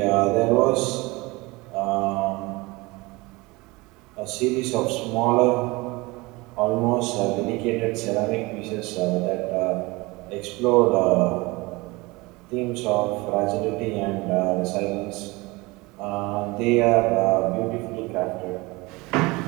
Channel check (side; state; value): left; quieter; 23.4 dB